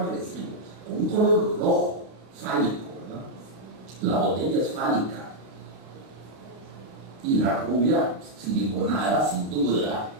agresivo, con un color rojo, fálico, ¿verdad? La botella es fálica. Y la rubia, siliconada, sin duda,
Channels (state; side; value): late; left; 32 ms